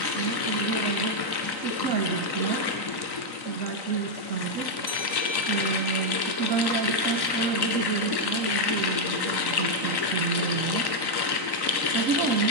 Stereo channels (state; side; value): late; left; 3.9 ms